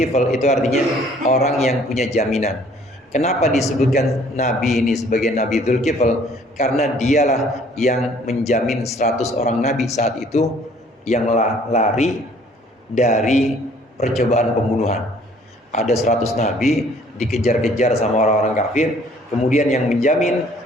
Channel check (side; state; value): both; normal; correlation 0.57